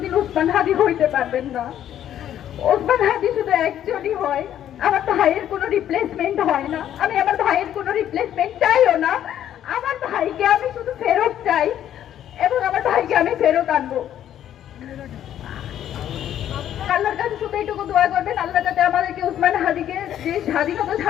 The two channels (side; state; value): right; quieter; 10.9 dB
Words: উসমান হাদি হইতে পারবেন না। উসমান হাদি শুধু একজনই হয়। আমার ভাইয়ের কোনো রিপ্লেসমেন্ট হয় না। আমি আমার ভাইয়ের কোনো রিপ্লেসমেন্ট চাইও না। আমার ভাইকে আমি শুধু ফেরত চাই এবং আমার ভাইকে আমি ফেরত আনবো। আল্লাহর কাছে শুধু এইটুকু দোয়া করবেন, আল্লাহ যাতে আমাদেরকে উসমান হাদিকে যে স্বাধীনতা